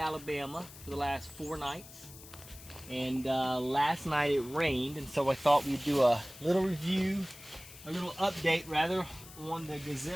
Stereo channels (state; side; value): noise; left; hiss, 17 dB below the sound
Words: for the last 4 nights, and last night it rained, and so I thought we'd do a little review, a little update rather, on the